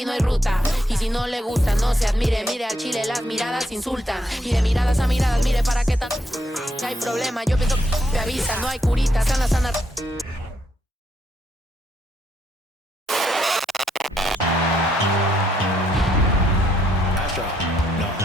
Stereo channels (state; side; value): normal; both; correlation 0.75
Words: no hay ruta. Y si no le gusta, no se admire. Mire al chile, las miradas insultan. Y de miradas a miradas, mire para qué tan... hay problema, yo pienso que avisa. No hay curita, sana, sana.